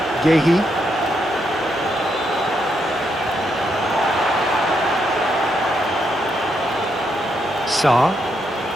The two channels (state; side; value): normal; both; correlation 0.79